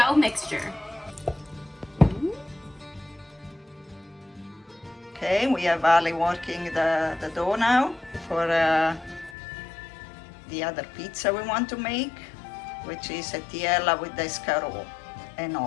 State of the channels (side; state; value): right; drops out; at 9.3 s